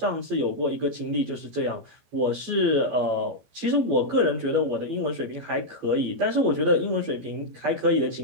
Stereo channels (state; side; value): late; left; 14 ms